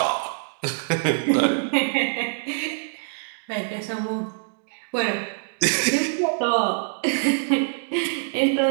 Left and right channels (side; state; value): left; silent; digital silence